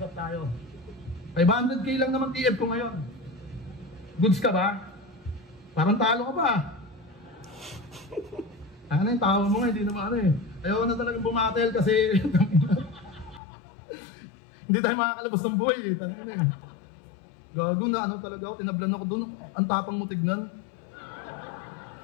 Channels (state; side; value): drops out; right; at 13.4 s